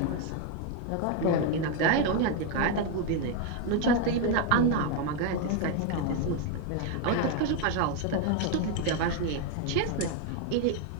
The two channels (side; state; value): both; different; correlation 0.01